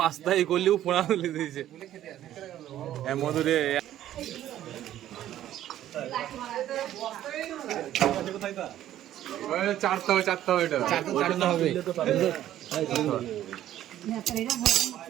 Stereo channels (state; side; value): quieter; left; 12.4 dB